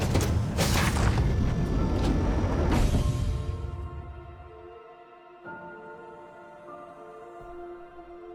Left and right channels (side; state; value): both; identical; correlation 1.00